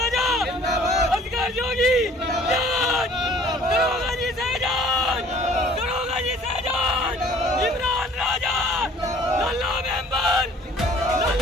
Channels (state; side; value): normal; both; correlation 0.53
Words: जिंदाबाद, असगर जोगी जिंदाबाद, दरोगा जी शहजाद, दरोगा जी शहजाद, इमरान राजा, लल्ला मेंबर,